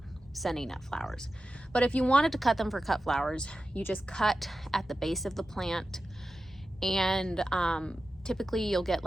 sending up flowers. But if you wanted to cut them for cut flowers, you just cut at the base of the plant, and typically you'll get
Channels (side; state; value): both; normal; correlation 0.93